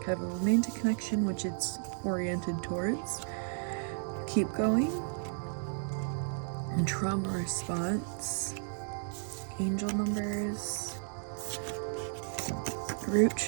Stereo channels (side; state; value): left; silent; 55 dB below the other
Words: kind of a romantic connection, which it's oriented towards. Keep going. And trauma response. Angel numbers. Root